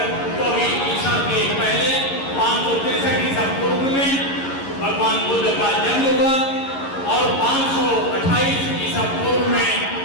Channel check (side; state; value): right; late; 11 ms